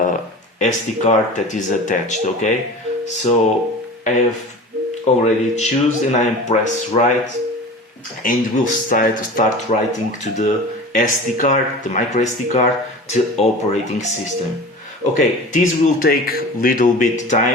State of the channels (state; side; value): normal; both; correlation 0.36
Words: SD card that is attached. Okay, so I have already choose, and I press write, and we'll start writing to the SD card, the micro SD card, to operating system. Okay, this will take little bit